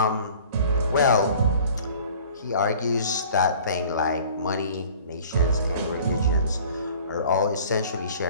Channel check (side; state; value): both; inverted; correlation -0.48